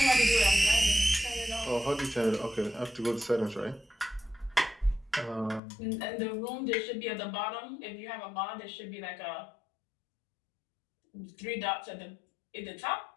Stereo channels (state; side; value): drops out; right; at 5.6 s